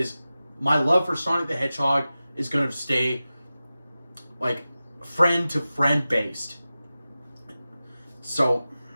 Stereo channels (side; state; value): both; inverted; correlation -0.95